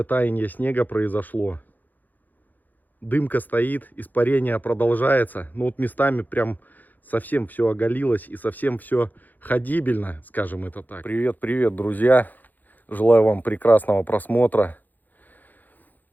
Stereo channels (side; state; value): right; late; 0.084 ms